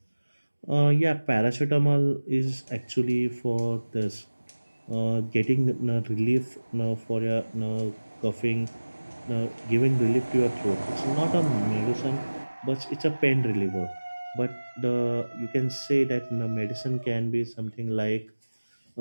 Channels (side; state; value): both; inverted; correlation -1.00